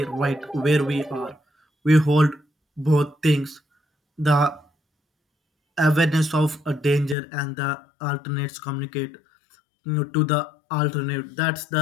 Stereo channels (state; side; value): drops out; right; at 7.2 s